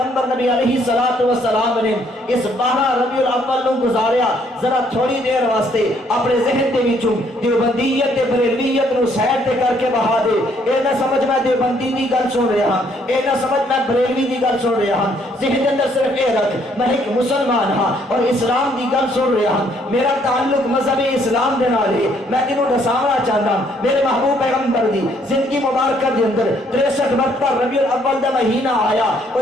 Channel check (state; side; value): normal; both; correlation 0.67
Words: نبی علیہ الصلوۃ والسلام نے اس 12 ربیع الاول نو گزاریا ذرا تھوڑی دیر واسطے اپنے ذہن دے وچوں دیوبندیت تے بریلویت نو سائڈ تے کر کے بہا دے اے نہ سمجھ میں دیوبندی دی گل سن رہا ہاں اے نہ سمجھ میں بریلوی دی گل سن رہا ہاں ذہن دے اندر صرف اے رکھ میں ایک مسلمان ہاں اور اسلام دی گل سن رہا ہاں میرا تعلق مذہب اسلام دے نال ہے میں تینوں دساونا چاہتا ہوں میرے محبوب پیغمبر دی زندگی مبارکہ دے اندر 63 مرتبہ ربیع الاول دا مہینہ آیا